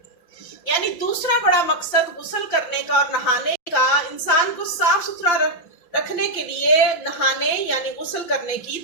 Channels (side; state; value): right; late; 5.8 ms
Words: یعنی دوسرا بڑا مقصد غسل کرنے کا اور نہانے کا انسان کو صاف ستھرا رکھنے کے لیے نہانے یعنی غسل کرنے کی